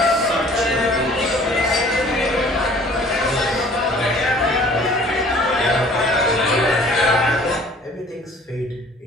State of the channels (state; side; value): normal; both; correlation 0.52